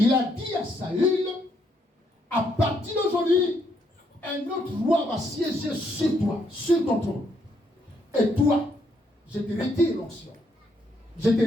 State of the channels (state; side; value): normal; both; correlation 0.74